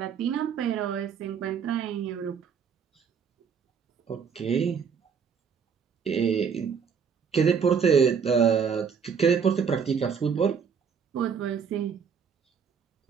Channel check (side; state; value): left; quieter; 6.6 dB